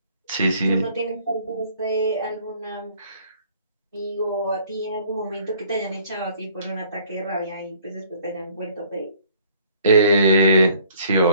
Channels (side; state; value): both; inverted; correlation -0.58